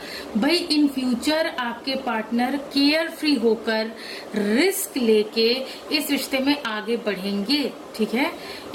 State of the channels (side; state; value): both; identical; correlation 1.00